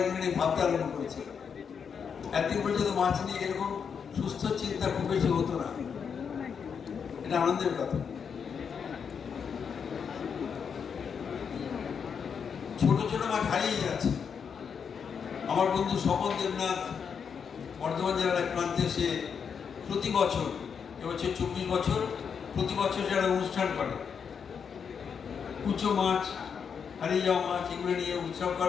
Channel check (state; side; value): quieter; right; 6.7 dB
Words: এগুলো নিয়ে ভাবতে আরম্ভ করেছেন। একদিন পর্যন্ত মাছ নিয়ে এরকম সুস্থ চিন্তা খুব বেশি হতো না, এটা আনন্দের কথা। ছোট ছোট মাছ হারিয়ে যাচ্ছে। আমার বন্ধু স্বপন দেবনাথ বর্ধমান জেলার এক প্রান্তে, সে প্রতি বছর, এবছর 24 বছর, প্রতি বছর যারা অনুষ্ঠান করে, কুচো মাছ, হারিয়ে যাওয়া মাছ, এগুলো নিয়ে উৎসব